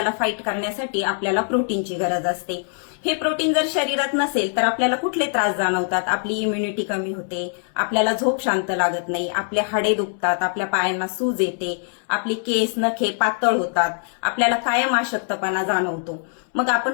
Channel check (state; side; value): silent; right; 64 dB below the other